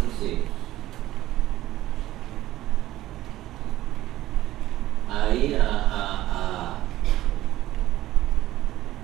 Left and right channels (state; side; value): quieter; left; 15.1 dB